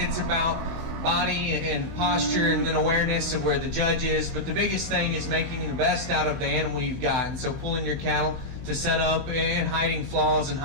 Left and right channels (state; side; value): late; left; 15 ms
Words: about body and posture and then awareness of where the judge is. But the biggest thing is making the best out of the animal you've got. And so pulling your cattle to set up and hiding flaws and